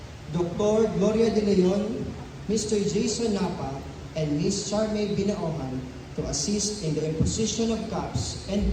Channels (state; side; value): identical; both; correlation 1.00